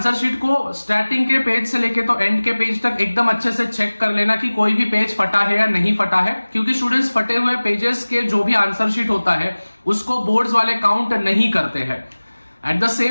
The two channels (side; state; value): both; inverted; correlation -1.00